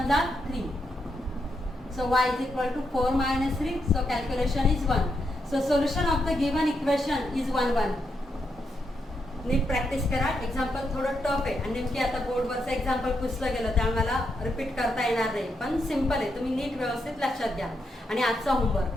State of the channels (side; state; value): both; normal; correlation 0.82